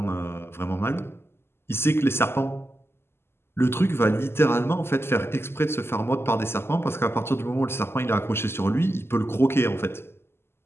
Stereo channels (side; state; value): right; late; 0.12 ms